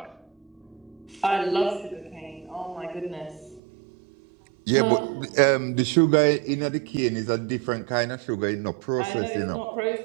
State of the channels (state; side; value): drops out; left; at 3.6 s